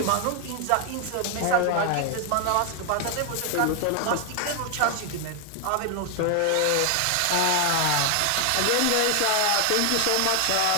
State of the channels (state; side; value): different; both; correlation 0.00